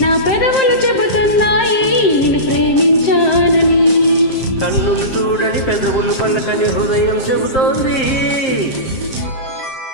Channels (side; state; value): right; late; 7.6 ms